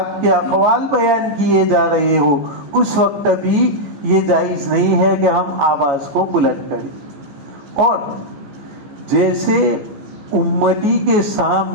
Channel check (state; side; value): late; left; 14 ms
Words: کے اقوال بیان کیے جا رہے ہو، اس وقت بھی یہ جائز نہیں ہے کہ ہم آواز کو بلند کریں۔ اور جیسے امتی کے